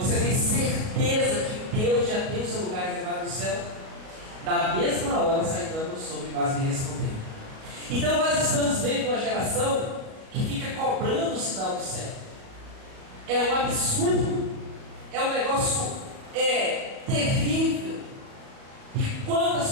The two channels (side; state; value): left; late; 37 ms